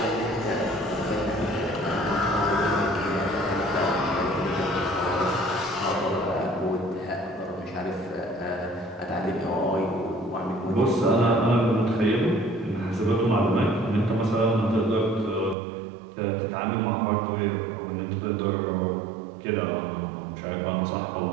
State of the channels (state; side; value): drops out; left; at 15.6 s